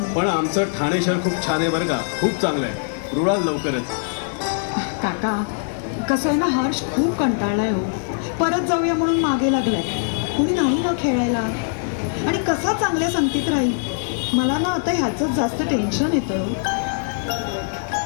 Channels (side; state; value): right; silent; 64 dB below the other